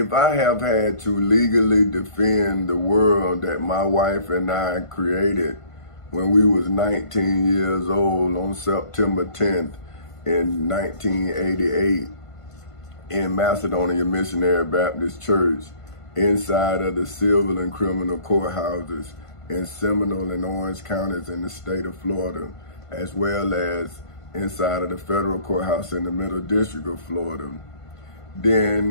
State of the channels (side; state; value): right; late; 1.5 ms